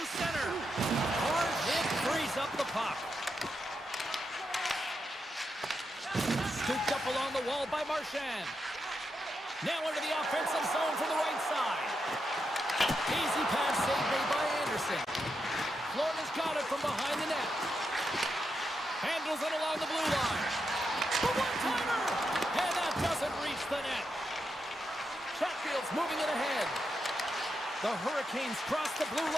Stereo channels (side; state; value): both; normal; correlation 0.85